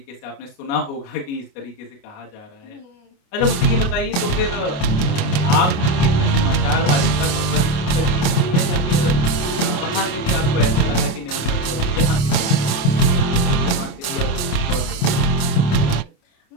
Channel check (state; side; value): late; right; 28 ms